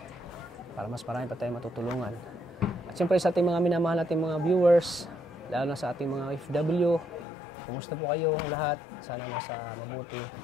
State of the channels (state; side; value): drops out; right; at 7.2 s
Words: para mas marami pa tayong matutulungan. At siyempre sa ating mga minamahal nating mga viewers, lalo na sa ating mga OFW, kumusta po kayo ang lahat? Sana nasa mabuti